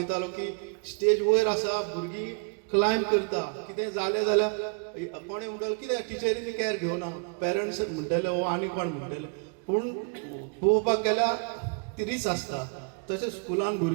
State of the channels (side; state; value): left; quieter; 37.1 dB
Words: की स्टेज वयर आसा भुरगीं क्लायंब करता. कितें जालें जाल्यार कोणें म्हणटालो कितें टिचरींनी कॅर घेवना, पेरंट्स म्हणटले वो आनी कोण म्हणटले. पूण पळोवपाक गेल्यार ती रीस आसता. तशें स्कुलान